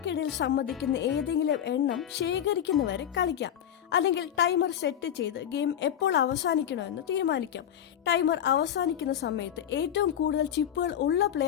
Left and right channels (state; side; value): quieter; right; 9.9 dB